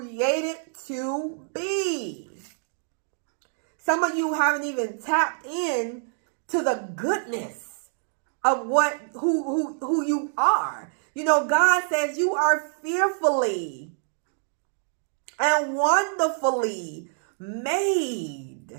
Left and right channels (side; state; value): left; silent; 61 dB below the other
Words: to be. Some of you haven't even tapped in to the goodness of who you are. God says you are fearfully and wonderfully made.